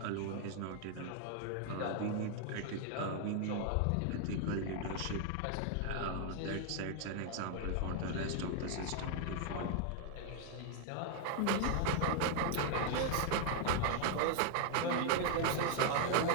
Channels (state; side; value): different; both; correlation 0.00